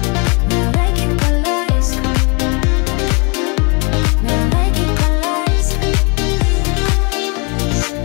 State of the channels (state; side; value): quieter; right; 32.5 dB